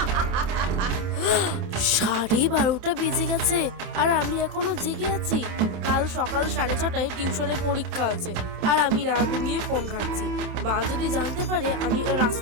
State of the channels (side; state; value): left; late; 27 ms